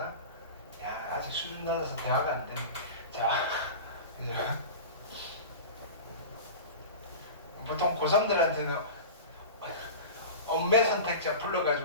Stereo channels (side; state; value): both; inverted; correlation -0.31